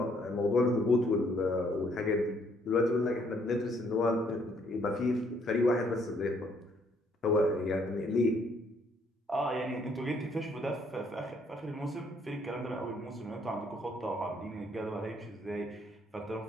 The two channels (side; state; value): both; normal; correlation 0.67